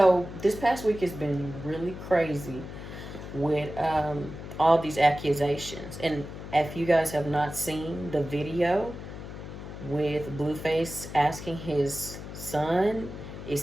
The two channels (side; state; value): left; noise; hum, 11 dB below the sound